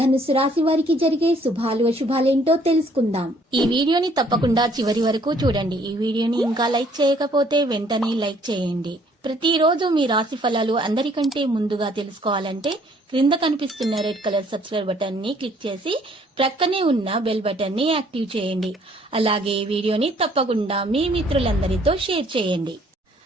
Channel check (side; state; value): both; normal; correlation 0.62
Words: రాశి వారికి జరిగే శుభాలు అశుభాలేంటో తెలుసుకుందాం. ఈ వీడియోని తప్పకుండా చివరి వరకు చూడండి. ఈ వీడియోని ఇంకా లైక్ చేయకపోతే వెంటనే లైక్ చేయండి. ప్రతిరోజు మీ రాశి ఫలాలు అందరికంటే ముందుగా తెలుసుకోవాలంటే క్రింద కనిపిస్తున్న రెడ్ కలర్ సబ్స్క్రైబ్ బటన్ ని క్లిక్ చేసి ప్రక్కనే ఉన్న బెల్ బటన్ ని యాక్టివ్ చేయండి. అలాగే వీడియోని తప్పకుండా మీ మిత్రులందరితో షేర్ చేయండి.